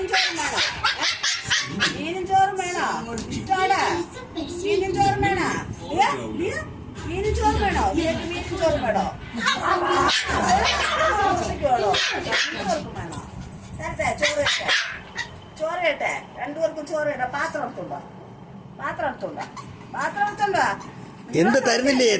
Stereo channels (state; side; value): identical; both; correlation 1.00